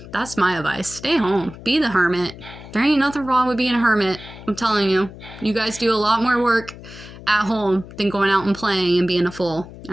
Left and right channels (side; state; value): left; noise; hum, 16 dB below the sound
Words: That's my advice. Stay home. Be the hermit. There ain't nothing wrong with being a hermit. I'm telling you. You guys do a lot more work at home than going out and playing and being a fool.